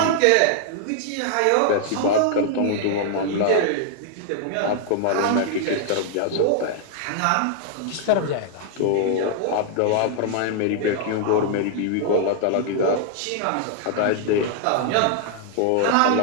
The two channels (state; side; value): different; both; correlation -0.01